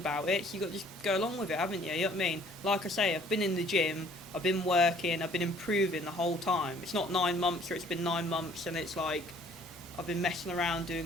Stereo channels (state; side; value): normal; both; correlation 0.57